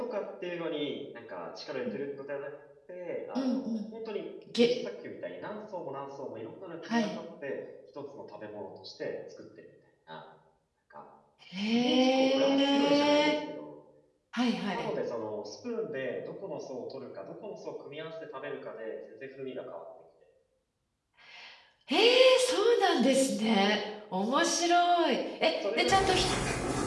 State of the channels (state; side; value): identical; both; correlation 1.00